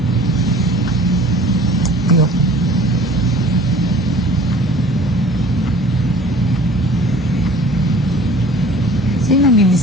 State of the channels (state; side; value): normal; both; correlation 0.48